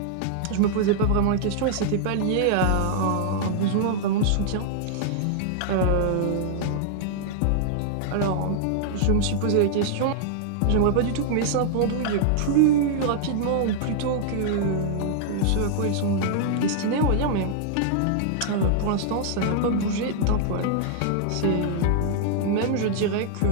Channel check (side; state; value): both; different; correlation -0.01